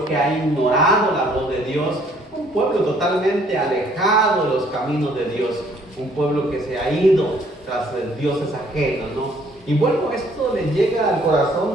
que ha ignorado la voz de Dios, un pueblo totalmente alejado de los caminos de Dios, un pueblo que se ha ido tras dioses ajenos, ¿no? Y bueno, esto le llega al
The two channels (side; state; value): both; normal; correlation 0.62